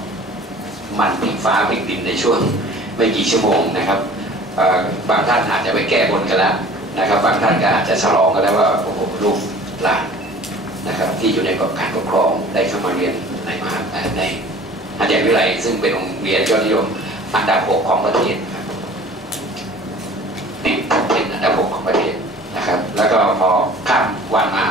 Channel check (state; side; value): normal; both; correlation 0.46